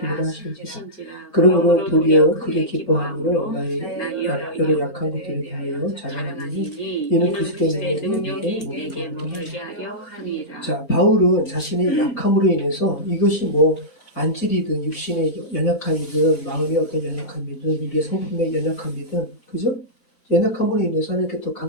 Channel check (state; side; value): normal; both; correlation -0.16